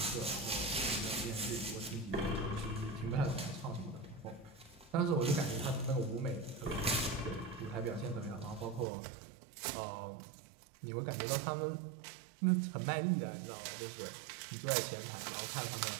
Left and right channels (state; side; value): drops out; left; at 8.8 s